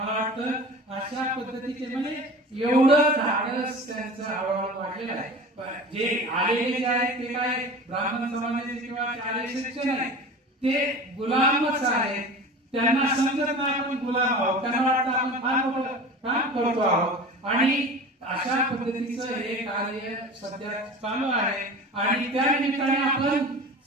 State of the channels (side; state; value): both; normal; correlation 0.36